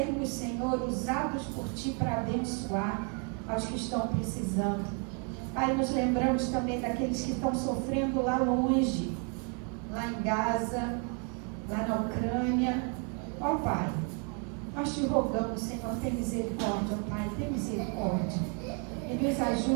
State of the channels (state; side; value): quieter; left; 38.3 dB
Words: Senhor, usados por Ti para abençoar aos que estão precisando. Pai, nos lembramos também daqueles que estão sofrendo lá longe, lá em Gaza, lá na Ucrânia. Ó Pai, nós Te rogamos, Senhor, tem misericórdia, ó Pai, tem misericórdia. E nos